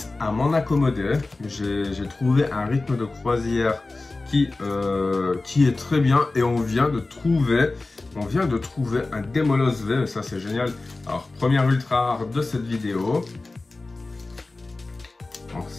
à m'en accommoder. J'ai trouvé un rythme de croisière qui est très bien. Et on vient de trouver un Demolos V. Ça, c'est génial. Alors, première ultra rare de cette vidéo. Alors,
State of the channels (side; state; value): right; quieter; 3.3 dB